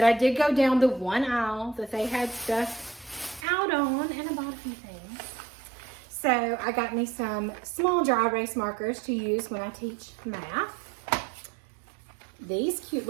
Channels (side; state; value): left; drops out; at 3.5 s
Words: I did go down the one aisle that they had stuff out on, and I bought a few things. So I got me some small dry erase markers to use when I teach math. These cute